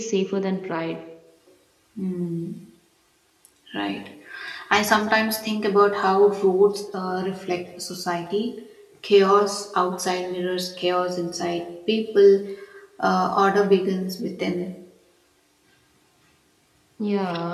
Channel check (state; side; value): identical; both; correlation 1.00